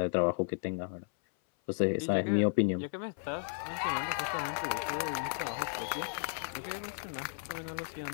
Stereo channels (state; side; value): silent; right; 55 dB below the other